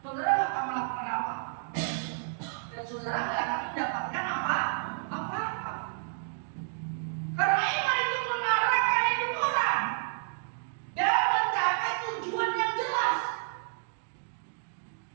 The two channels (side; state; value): left; silent; digital silence